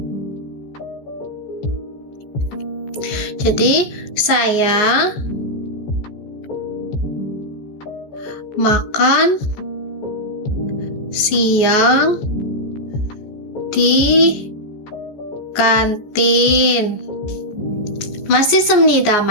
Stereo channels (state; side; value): late; right; 14 ms